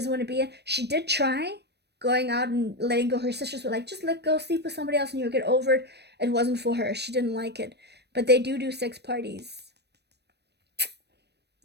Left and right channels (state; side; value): late; left; 0.49 ms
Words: want to be. She did try going out and letting go. Her sisters were like, just let go, sleep with somebody else, and you'll get over it. It wasn't for her. She didn't like it. But they do sex parties.